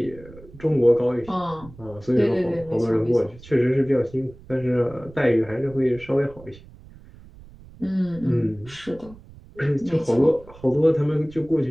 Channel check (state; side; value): noise; right; rumble, 21 dB below the sound